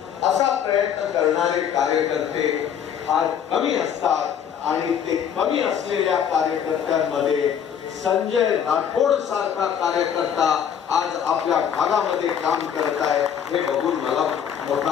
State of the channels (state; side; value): quieter; right; 8.5 dB